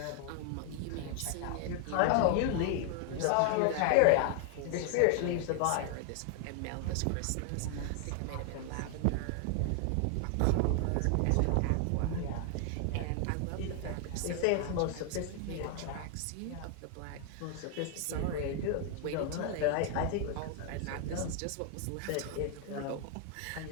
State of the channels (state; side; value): different; both; correlation 0.00